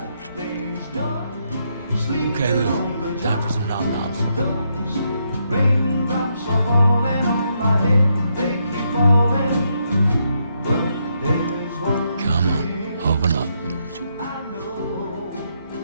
Okay, Lou. Time for some nom-noms. Come on, open up.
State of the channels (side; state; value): both; inverted; correlation -0.78